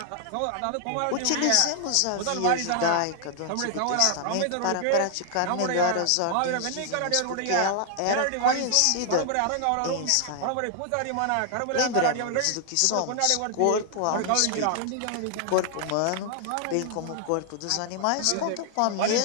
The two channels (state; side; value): different; both; correlation 0.00